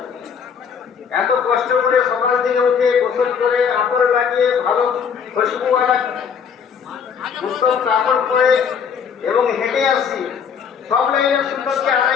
এত কষ্ট করে সকাল থেকে উঠে গোসল করে আতর লাগিয়ে ভালো খুশবুওয়ালা উত্তম কাপড় পরে এবং হেঁটে আসছি, সব লাইনের সুন্নতকে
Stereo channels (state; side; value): quieter; right; 6.9 dB